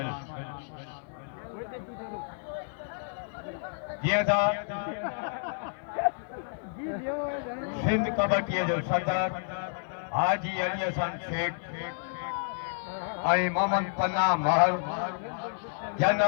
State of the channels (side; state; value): right; silent; digital silence